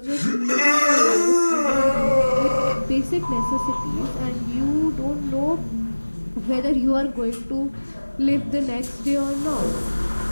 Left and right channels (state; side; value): inverted; both; correlation -1.00